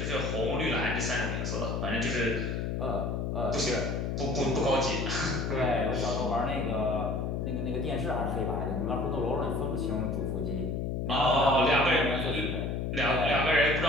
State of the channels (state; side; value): noise; left; hum, 1 dB below the sound